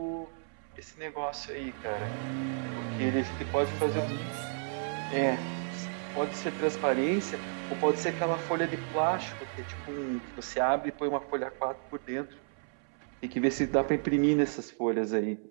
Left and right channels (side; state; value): left; silent; 56 dB below the other